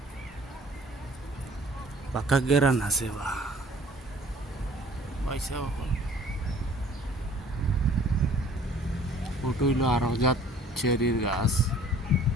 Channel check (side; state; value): both; normal; correlation 0.53